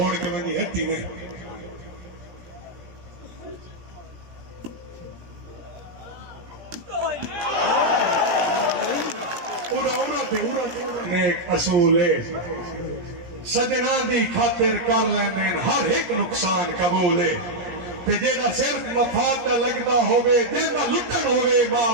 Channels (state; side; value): late; left; 17 ms